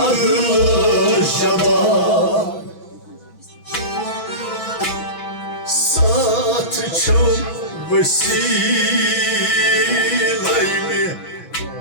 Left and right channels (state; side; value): late; right; 6.1 ms